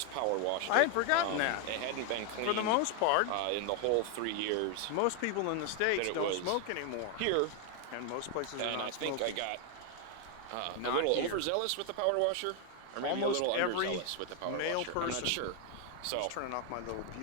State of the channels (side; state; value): both; different; correlation 0.00